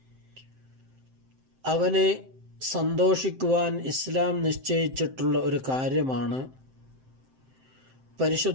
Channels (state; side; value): late; left; 7.7 ms